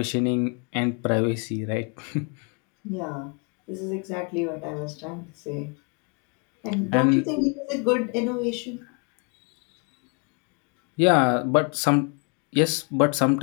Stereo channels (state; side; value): quieter; right; 36.1 dB